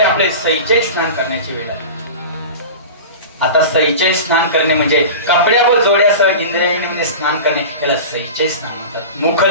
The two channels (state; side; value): inverted; both; correlation -0.32